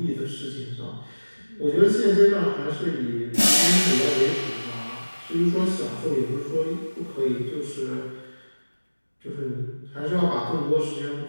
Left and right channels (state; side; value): inverted; both; correlation -1.00